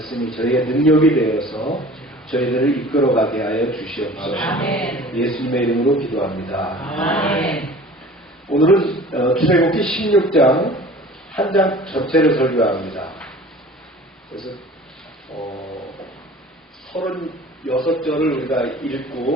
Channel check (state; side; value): normal; both; correlation 0.44